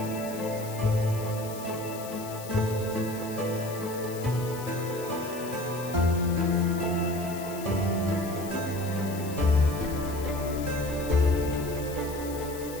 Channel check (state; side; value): noise; left; hiss, 14 dB below the sound